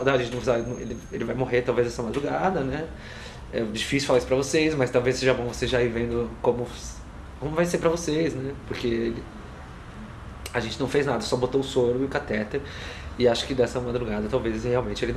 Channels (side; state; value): both; identical; correlation 1.00